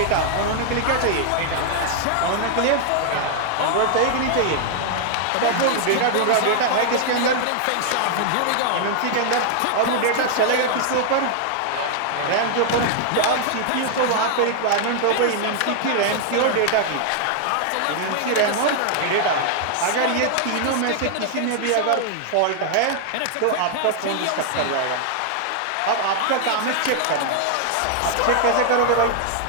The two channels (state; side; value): different; both; correlation 0.00